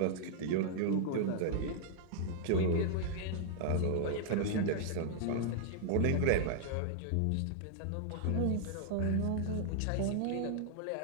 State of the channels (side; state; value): both; different; correlation -0.01